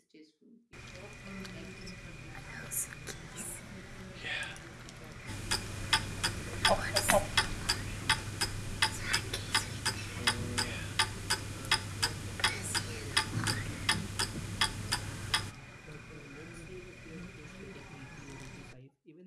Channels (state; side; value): identical; both; correlation 1.00